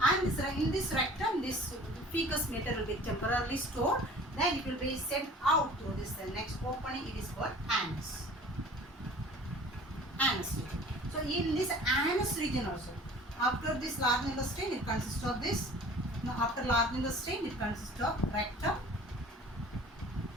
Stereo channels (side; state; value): both; normal; correlation 0.46